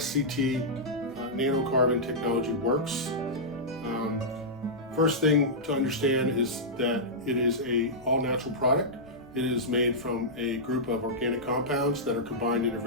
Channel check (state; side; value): noise; left; rumble, 26 dB below the sound